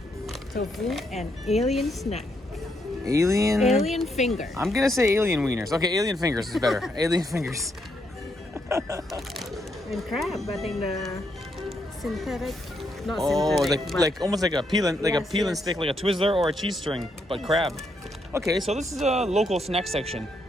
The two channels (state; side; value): normal; both; correlation 0.77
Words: Tofu and alien snack. Alien? Alien finger. I'm gonna say alien wieners. Okay, alien fingers is better. Alien fingers. And crab. I think the synthetic. Not Oh, synthetic. like almost like a peel and Yes, peel and yes. stick, like a Twizzler or a cheese string, but crab. Okay, so this is a local snack section,